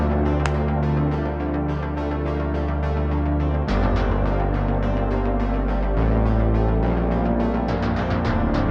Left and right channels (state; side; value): identical; both; correlation 1.00